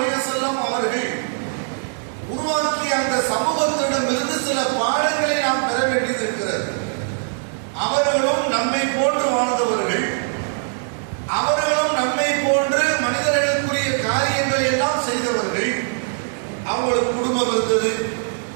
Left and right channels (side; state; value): left; silent; digital silence